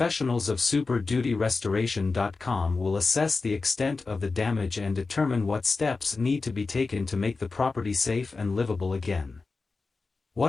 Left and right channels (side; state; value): right; quieter; 4.0 dB